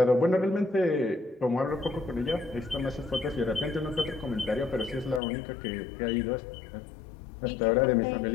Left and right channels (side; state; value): right; drops out; at 5.2 s